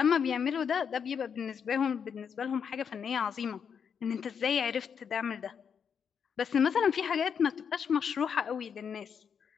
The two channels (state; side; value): quieter; right; 7.1 dB